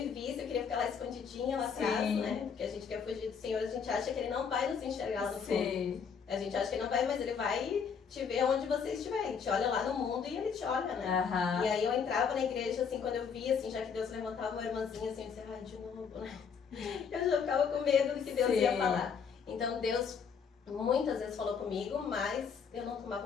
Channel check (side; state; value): right; quieter; 6.5 dB